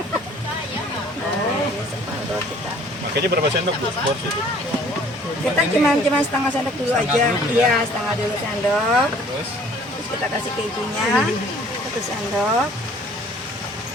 ini separuh kita. Makanya berapa sendok Bu? Porsi itu. Kita cuma setengah sendok dulu aja. Iya, setengah dulu sendok. Terus Terus kita kasih kejunya 1 sendok.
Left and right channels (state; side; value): normal; both; correlation 0.54